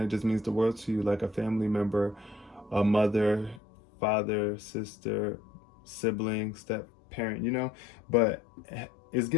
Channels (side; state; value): right; drops out; at 3.6 s